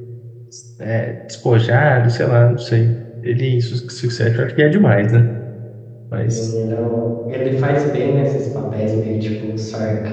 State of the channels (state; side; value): identical; both; correlation 1.00